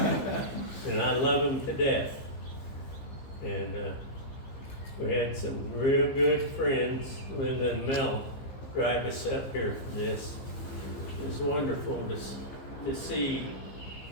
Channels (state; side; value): late; right; 15 ms